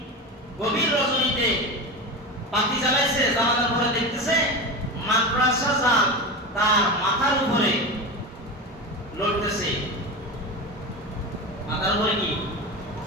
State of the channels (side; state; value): both; normal; correlation 0.24